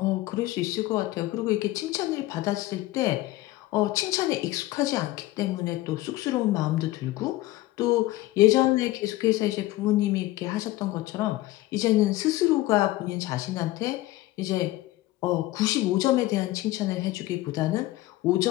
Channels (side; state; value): right; quieter; 17.2 dB